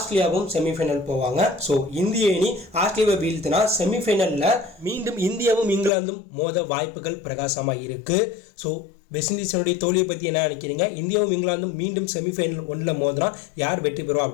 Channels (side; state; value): right; drops out; at 5.9 s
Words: செமிஃபைனல் போவாங்க. ஸோ இந்திய அணி ஆஸ்திரேலியாவை வீழ்த்தினா செமிஃபைனலில் மீண்டும் இந்தியாவும் இங்கிலாந்தும் மோத வாய்ப்புகள் பிரகாசமாக இருக்குது. ஸோ வெஸ்ட் இண்டீஸனுடைய தோல்வியை பற்றி என்ன நினைக்கிறீங்க? இந்தியாவும் இங்கிலாந்தும் மீண்டும் செமிஃபைனல் 1ல் மோதினா யார் வெற்றி பெறுவோம்